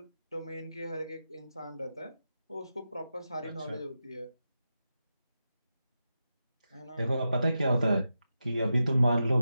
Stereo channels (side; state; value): both; inverted; correlation -0.89